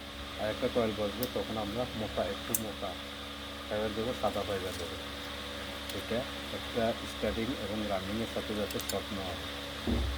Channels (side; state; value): both; identical; correlation 1.00